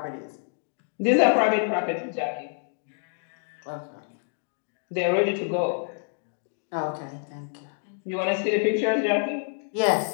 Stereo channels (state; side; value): silent; right; 59 dB below the other